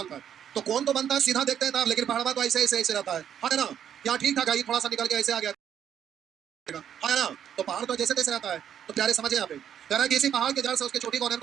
तो कौन तो बनता है सीधा देखते हैं ना, लेकिन पहाड़ तो ऐसे ऐसे ऐसे रहता है ना, यहाँ ठीक ठाक है, थोड़ा सा निकल के ऐसे आ गया है ना, तो पहाड़ तो जैसे तैसे रहता है। तो प्यारे समझे यहाँ पे कह रहा है किसी पहाड़ के जड़ से उसके चोटी का उन्नयन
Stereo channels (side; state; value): left; quieter; 9.3 dB